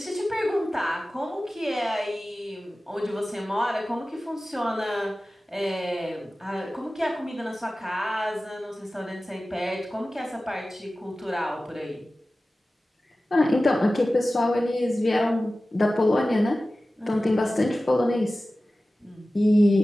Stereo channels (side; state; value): both; normal; correlation 0.96